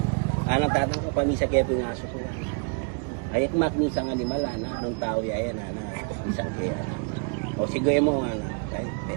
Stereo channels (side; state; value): left; quieter; 39.6 dB